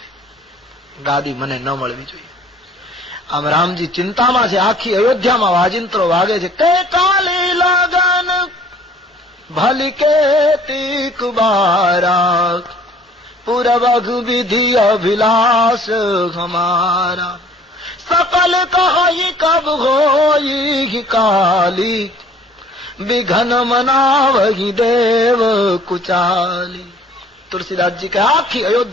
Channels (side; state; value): both; normal; correlation 0.55